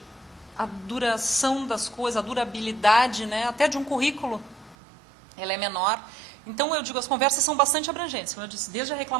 a duração das coisas, a durabilidade, né, até de um currículo, ela é menor. Então, eu digo, as conversas são bastante abrangentes, como eu disse, desde a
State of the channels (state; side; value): drops out; left; at 4.8 s